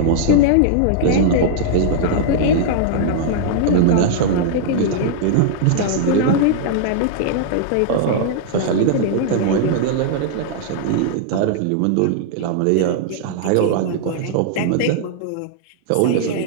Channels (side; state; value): both; different; correlation -0.01